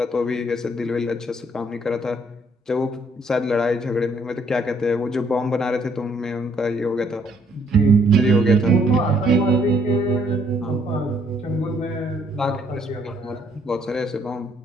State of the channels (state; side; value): normal; both; correlation 0.67